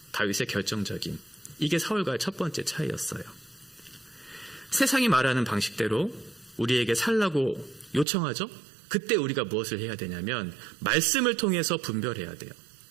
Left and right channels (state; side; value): drops out; left; at 8.1 s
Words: 다윗의 결정적인, 이게 사울과의 첫 번째 차이였어요. 세상이 말하는 방식대로 우리에게 살라고 요청하죠. 그때 우리가 무엇을 해야 되냐면 말씀을 통해서 분별해야 돼요.